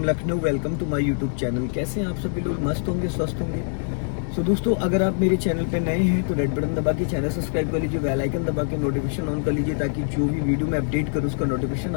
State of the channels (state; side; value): silent; right; digital silence